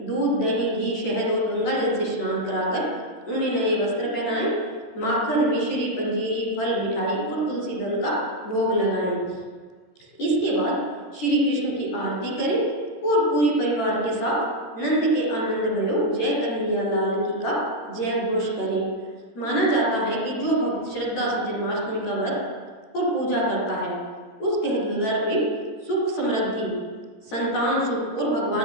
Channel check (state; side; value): late; right; 13 ms